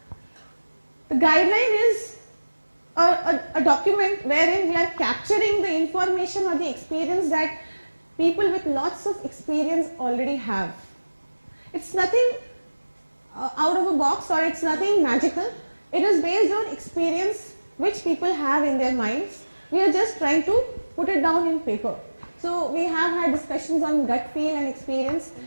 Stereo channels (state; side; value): inverted; both; correlation -1.00